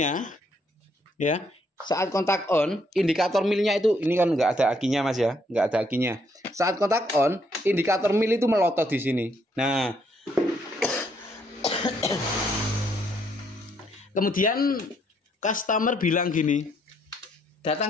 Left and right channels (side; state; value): both; normal; correlation 0.71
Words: ya, saat kontak on, indikator milnya itu, ini kan nggak ada akinya Mas ya, nggak ada akinya. Saat kontak on, indikator mil itu melotot di sini. Nah, kemudian customer bilang gini, datang